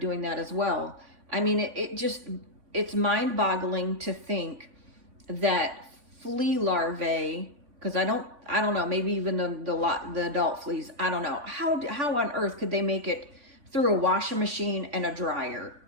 that as well. I mean, it's mind-boggling to think that flea larvae, because I don't know, maybe even the adult fleas, I don't know, how on earth could they make it through a washing machine and a dryer?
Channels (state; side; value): late; left; 3.4 ms